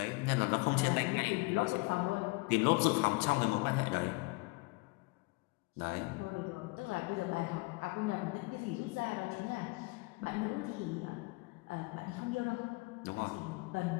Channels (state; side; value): quieter; right; 26.1 dB